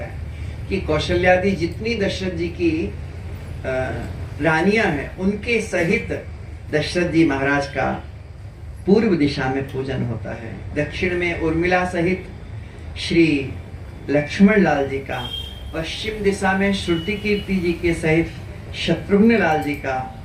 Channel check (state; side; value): identical; both; correlation 1.00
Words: है कि कौशल्यादि जितनी दशरथ जी की रानियां हैं उनके सहित दशरथ जी महाराज का पूर्व दिशा में पूजन होता है। दक्षिण में उर्मिला सहित श्री लक्ष्मण लाल जी का, पश्चिम दिशा में श्रुति कीर्ति जी के सहित शत्रुघ्न लाल जी का,